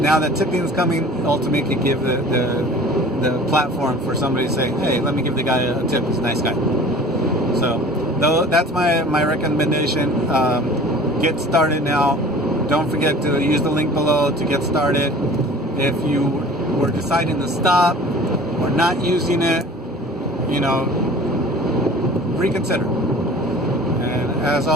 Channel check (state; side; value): normal; both; correlation 0.44